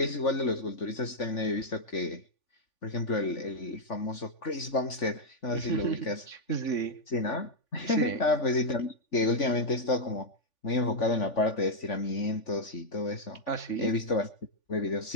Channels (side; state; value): right; late; 3.5 ms